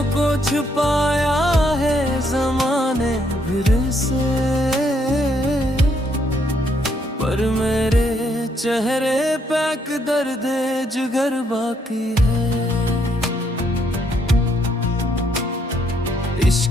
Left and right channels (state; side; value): normal; both; correlation 0.72